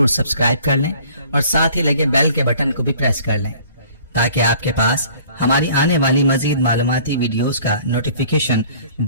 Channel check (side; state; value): both; inverted; correlation -0.52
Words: سبسکرائب کر لیں اور ساتھ ہی لگے بیل کے بٹن کو بھی پریس کر لیں، تاکہ آپ کے پاس ہماری آنے والی مزید معلوماتی ویڈیوز کا نوٹیفیکیشن